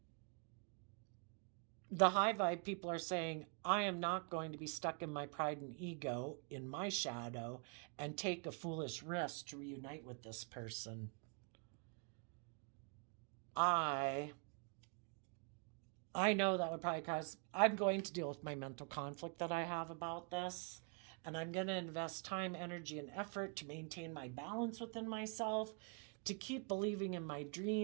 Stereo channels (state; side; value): quieter; left; 37.5 dB